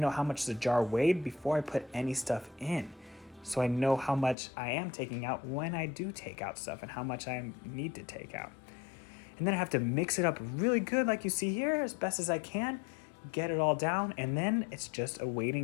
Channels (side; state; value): right; drops out; at 4.4 s